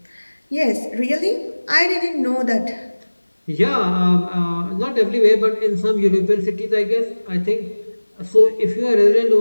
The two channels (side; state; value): both; inverted; correlation -1.00